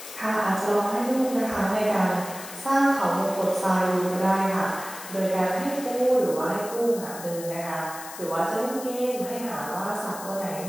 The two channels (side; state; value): left; noise; hiss, 13 dB below the sound